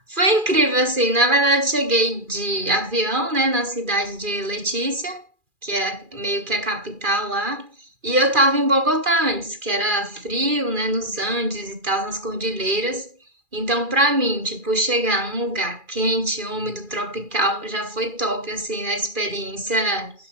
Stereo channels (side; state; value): left; late; 2.4 ms